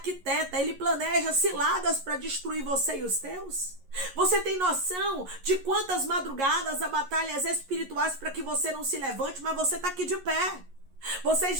ele planeja ciladas para destruir você e os teus? Você tem noção de quantas madrugadas há batalhas espirituais para que você não se levante, mas você está aqui de pé. Você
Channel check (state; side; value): late; left; 11 ms